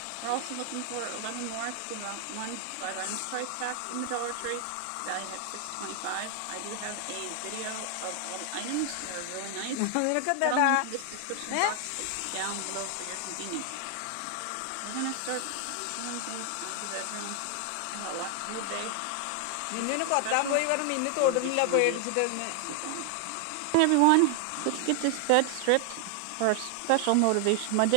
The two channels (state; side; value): different; both; correlation 0.00